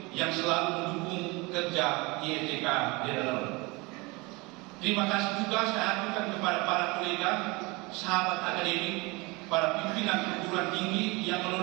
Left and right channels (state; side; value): quieter; left; 25.4 dB